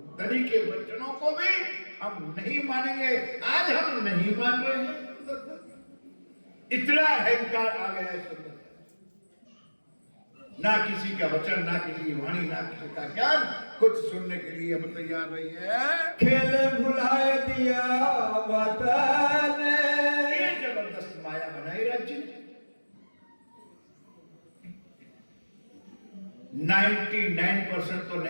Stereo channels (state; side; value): inverted; both; correlation -1.00